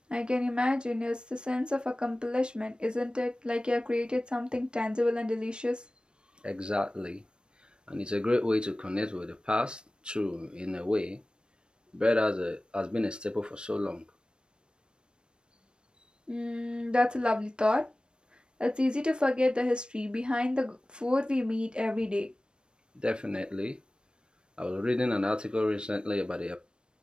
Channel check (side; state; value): left; late; 0.053 ms